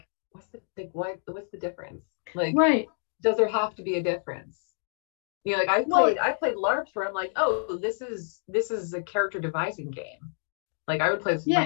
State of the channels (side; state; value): right; silent; digital silence